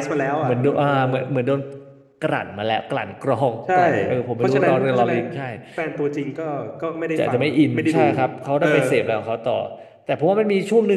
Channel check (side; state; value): both; identical; correlation 1.00